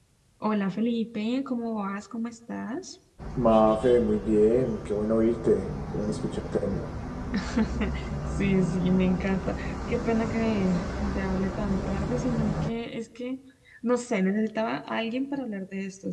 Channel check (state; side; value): identical; both; correlation 1.00